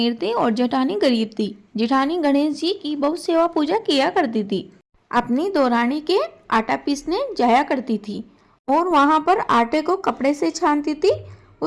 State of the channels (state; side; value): identical; both; correlation 1.00